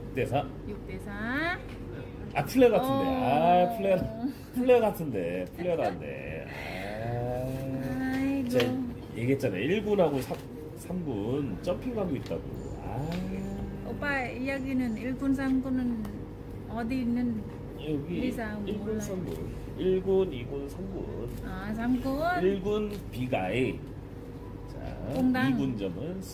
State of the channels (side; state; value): both; identical; correlation 1.00